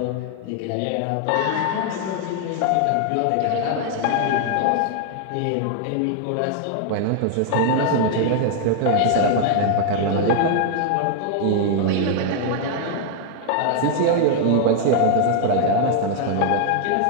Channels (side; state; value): both; different; correlation 0.00